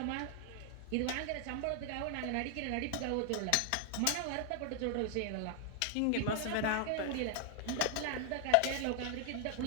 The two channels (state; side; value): different; both; correlation 0.00